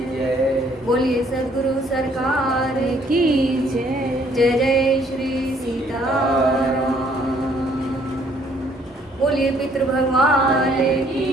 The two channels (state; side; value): normal; both; correlation 0.64